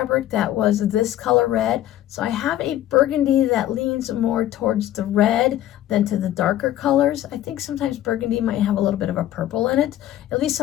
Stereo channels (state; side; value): quieter; right; 12.9 dB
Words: that was this color red, so I have a burgundy that leans more towards the red than to the darker colors. I think sometimes burgundy might have a little bit of a purple in it. At least